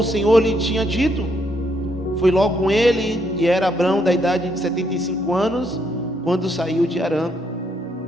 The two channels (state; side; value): normal; both; correlation 0.74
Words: Senhor lhe tinha dito. Foi logo com ele, e era Abrão da idade de 75 anos, quando saiu de Harã.